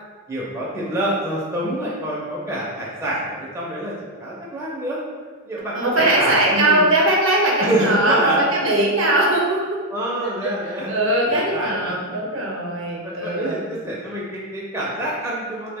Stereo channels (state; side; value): normal; both; correlation 0.03